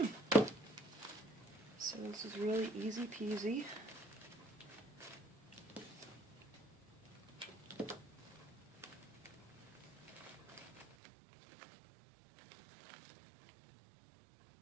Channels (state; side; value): drops out; left; at 11.0 s